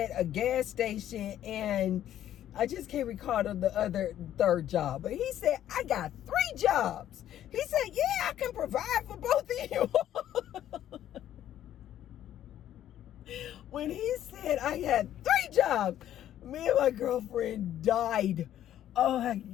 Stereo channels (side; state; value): right; quieter; 11.7 dB